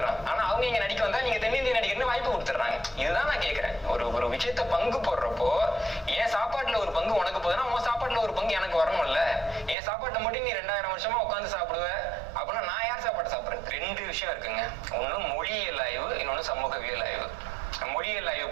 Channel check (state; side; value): drops out; left; at 9.8 s